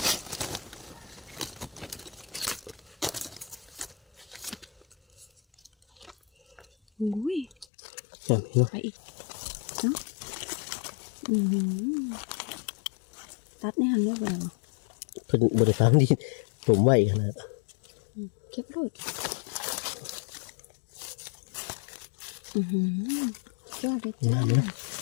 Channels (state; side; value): drops out; right; at 7.7 s